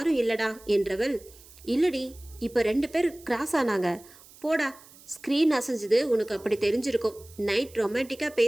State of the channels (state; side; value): noise; right; hiss, 23 dB below the sound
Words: இல்லடா என்றவள், இல்லடி, இப்ப 2 பேர் கிராஸ் ஆனாங்க. போடா, ஸ்க்ரீன் அசைஞ்சது உனக்கு அப்படி தெரிஞ்சிருக்கும். நைட் ரொமான்டிக்கா